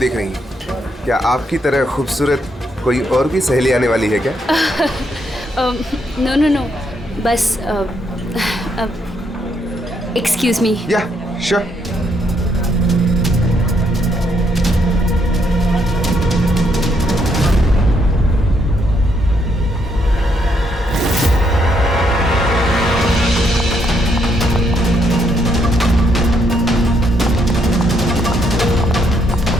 रही हैं? क्या आपकी तरह खूबसूरत कोई और भी सहेली आने वाली है क्या? नो नो नो, बस एक्सक्यूज मी। या, श्योर।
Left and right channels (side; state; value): both; normal; correlation 0.74